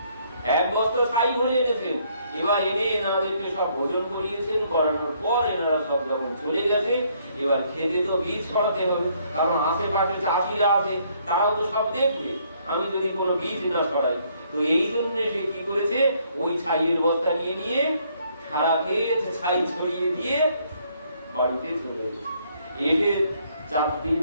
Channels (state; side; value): inverted; both; correlation -0.68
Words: এক বস্তা ছাই ভরে এনেছেন। এবার এনে এনাদেরকে সব ভোজন করিয়েছেন, করানোর পর এনারা সব যখন চলে গেছে, এবার খেতে তো বীজ ছড়াতে হবে, কারণ আশেপাশে চাষিরা আছে, তারাও তো সব দেখবে আমি যদি কোনো বীজ না ছড়াই। তো এই জন্য সে কি করেছে, ওই ছাইয়ের বস্তা নিয়ে নিয়ে সারা ক্ষেত ছাই ছড়িয়ে দিয়ে বাড়িতে চলে গেছে। এসে 4 দিন